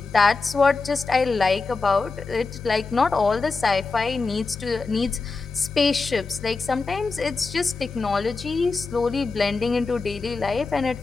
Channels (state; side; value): quieter; right; 4.1 dB